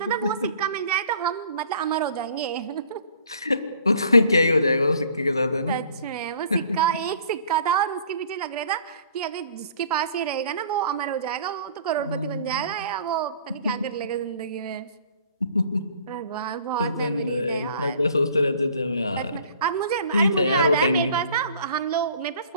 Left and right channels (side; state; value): both; inverted; correlation -0.53